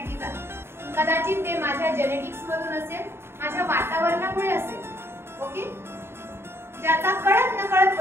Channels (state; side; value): late; left; 0.12 ms